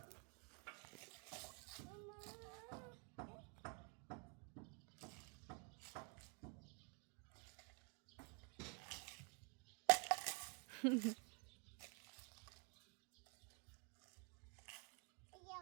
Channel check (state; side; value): quieter; left; 35.3 dB